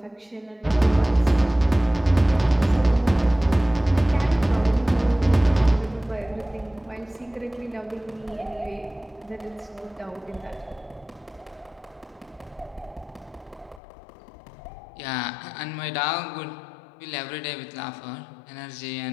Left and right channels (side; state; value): right; drops out; at 13.8 s